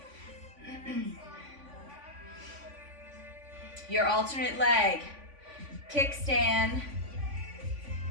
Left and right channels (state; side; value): late; left; 3.5 ms